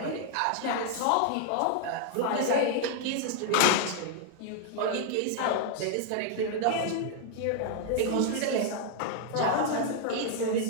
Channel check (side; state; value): both; different; correlation 0.00